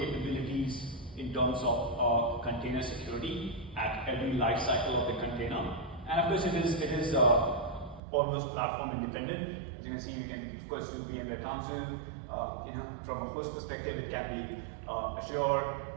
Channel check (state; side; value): drops out; left; at 8.0 s